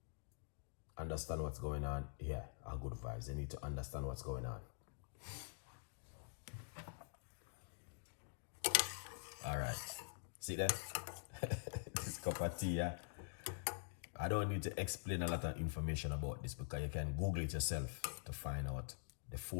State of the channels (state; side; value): silent; right; digital silence